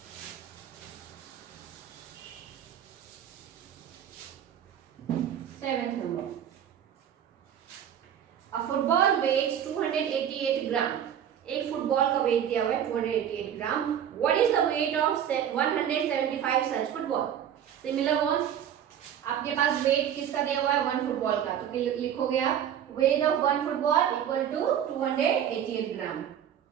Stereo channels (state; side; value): quieter; left; 9.6 dB